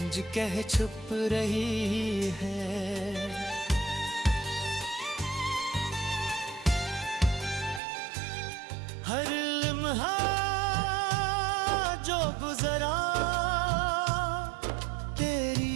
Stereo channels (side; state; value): left; drops out; at 7.8 s